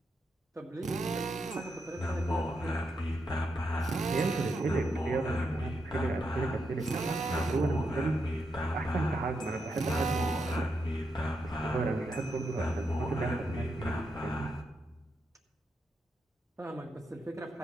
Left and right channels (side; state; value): both; normal; correlation 0.83